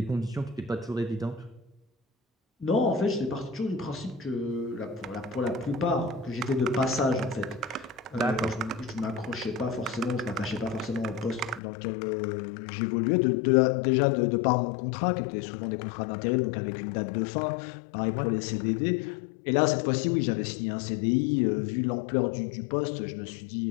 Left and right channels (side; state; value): right; drops out; at 11.6 s